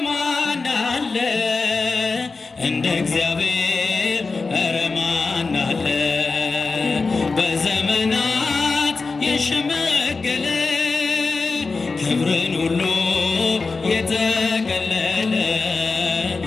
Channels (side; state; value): right; quieter; 4.1 dB